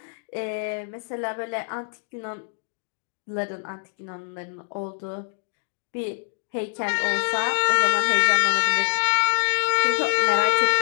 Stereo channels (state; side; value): silent; right; digital silence